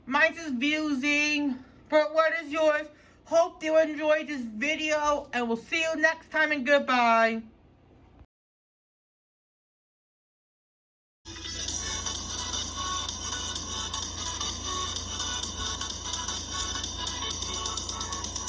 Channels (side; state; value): both; identical; correlation 1.00